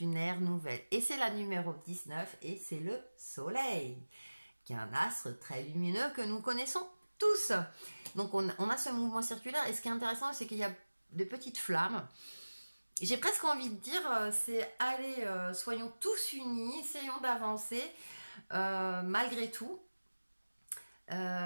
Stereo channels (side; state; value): both; inverted; correlation -1.00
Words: ère nouvelle. Et c'est la numéro 19 et c'est le soleil, qui est un astre très lumineux que nous connaissons tous. Donc on a ce mouvement circulaire et ce qui est intéressant, c'est qu'il y a de petites flammes. J'ai presque envie de dire, c'est allez, soyons tous unis, essayons d'avancer malgré tout.